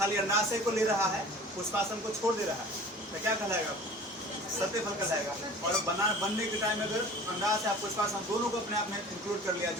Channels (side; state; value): both; normal; correlation 0.43